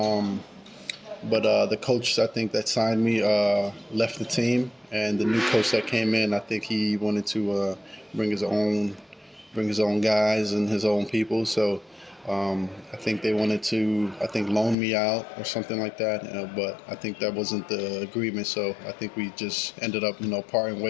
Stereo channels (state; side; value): drops out; right; at 14.8 s